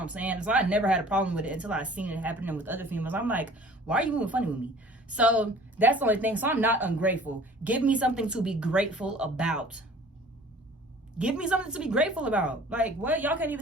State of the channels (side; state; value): both; normal; correlation 0.48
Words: I'm saying? So I never had a problem with it until I seen it happening with other females. I'm like, why are you moving funny with me? So that's the only thing. So I'm not ungrateful. Give me something to be grateful about. Give me something to be grateful about. Like, what? Y'all can't